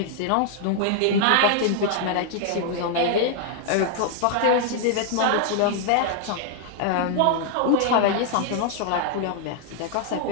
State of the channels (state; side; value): different; both; correlation 0.00